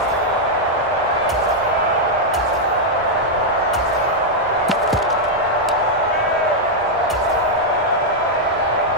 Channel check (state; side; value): normal; both; correlation -0.03